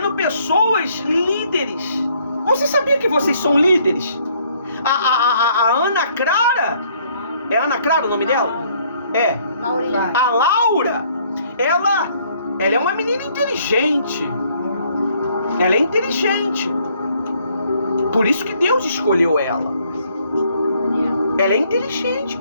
pessoas líderes. Você sabia que vocês são líderes? A Ana Clara, é Ana Clara o nome dela? É. A Laura, ela é uma menina inteligente. Ela é inteligente. Por isso que Deus escolheu ela. Ela é inteligente,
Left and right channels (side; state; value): both; inverted; correlation -0.65